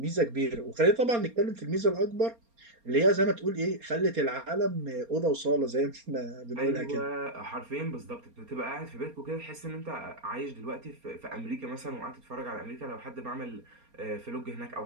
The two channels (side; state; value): left; late; 4.3 ms